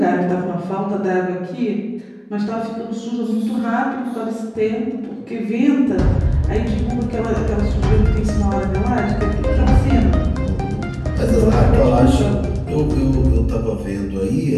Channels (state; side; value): identical; both; correlation 1.00